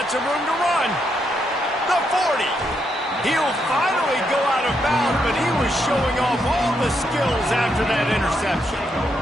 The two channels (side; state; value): both; normal; correlation 0.79